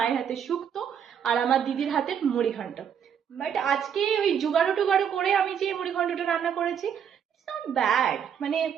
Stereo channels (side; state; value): left; quieter; 8.1 dB